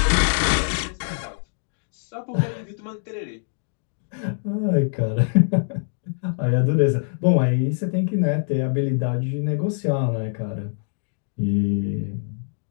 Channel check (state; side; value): silent; right; 63 dB below the other